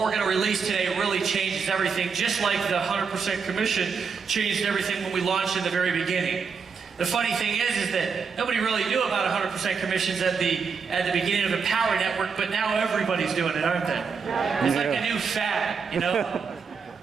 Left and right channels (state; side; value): quieter; left; 5.7 dB